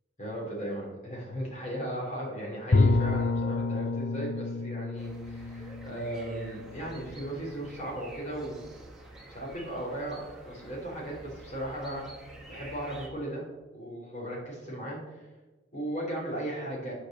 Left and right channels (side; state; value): both; normal; correlation 0.60